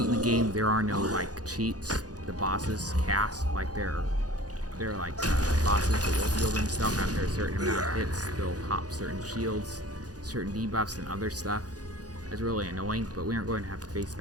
in the game, there are no like cheats. The bosses cast like they're like bosses that will heal themselves after a certain amount of hits. They'll hop certain shields, certain debuffs, and other stuff. It's really annoying, but we aren't going to have to face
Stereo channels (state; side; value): late; left; 0.68 ms